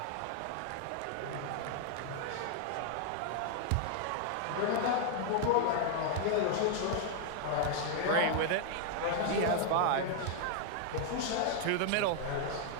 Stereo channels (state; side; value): different; both; correlation 0.00